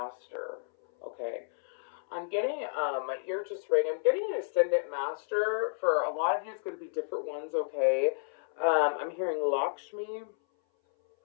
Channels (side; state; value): right; silent; 57 dB below the other